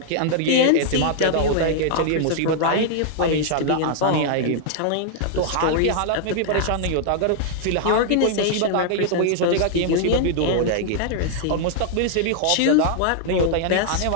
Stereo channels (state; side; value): different; both; correlation -0.01